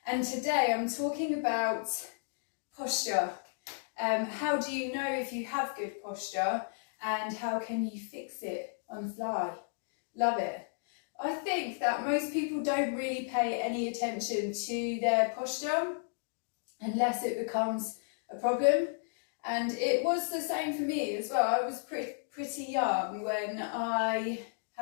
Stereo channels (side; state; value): right; silent; digital silence